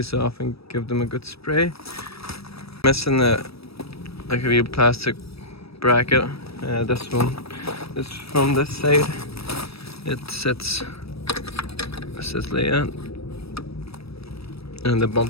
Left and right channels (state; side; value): late; right; 0.78 ms